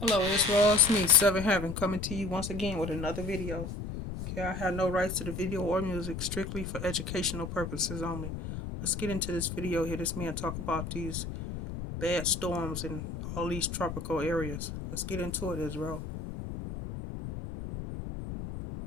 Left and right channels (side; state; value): left; noise; rumble, 7 dB below the sound